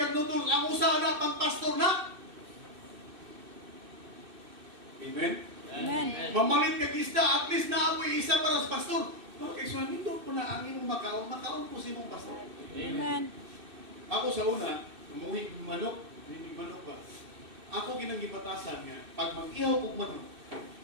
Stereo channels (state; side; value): late; left; 2.6 ms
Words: nutol, ang usa na pang pastor na. Amen. Amen. Mamalit kag isda, at least na apoy isa para sa pastor. Mga kaisunan, nindot po na ang imong makaon po sa imong pastor. Amen. Ako sa una, umuwi manok, hindi manok ba? Ako ginanggibatasan nga, pag mag-ihaw kong manok,